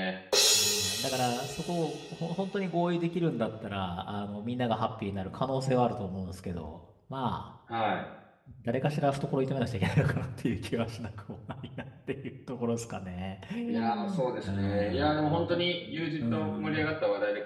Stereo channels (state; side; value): identical; both; correlation 1.00